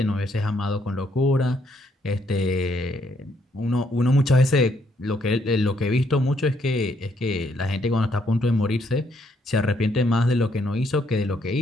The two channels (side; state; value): both; normal; correlation 0.72